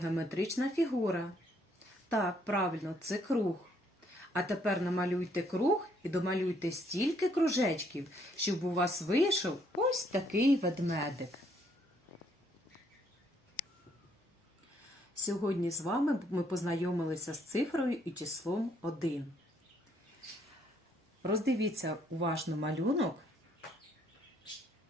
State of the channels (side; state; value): both; normal; correlation 0.69